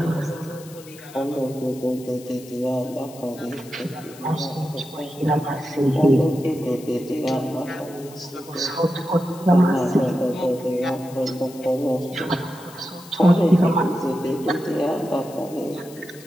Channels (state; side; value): noise; left; hiss, 20 dB below the sound